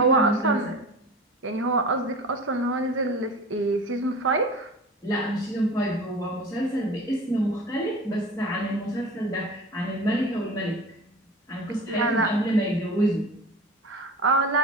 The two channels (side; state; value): both; normal; correlation 0.36